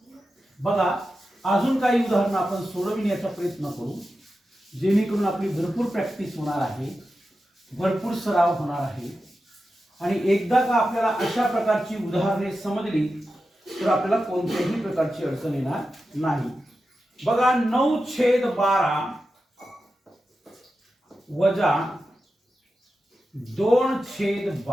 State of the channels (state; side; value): normal; both; correlation 0.91